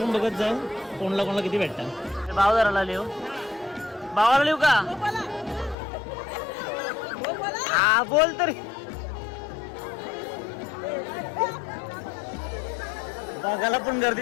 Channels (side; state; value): right; drops out; at 5.8 s